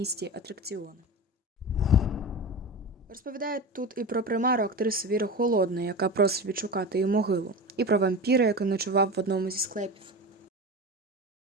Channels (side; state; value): both; normal; correlation 0.27